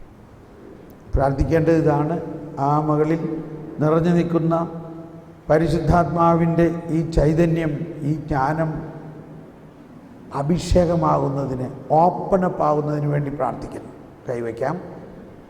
പ്രാർത്ഥിക്കേണ്ടത് ഇതാണ്: ആ മകളിൽ നിറഞ്ഞു നിൽക്കുന്ന പരിശുദ്ധാത്മാവിൻ്റെ ഈ ചൈതന്യം, ഈ ജ്ഞാനം അഭിഷേകമാകുന്നതിന്, ഓപ്പണപ്പ് ആകുന്നതിന് വേണ്ടി പ്രാർത്ഥിക്കുന്നു. കൈവയ്ക്കാം.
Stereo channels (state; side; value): identical; both; correlation 1.00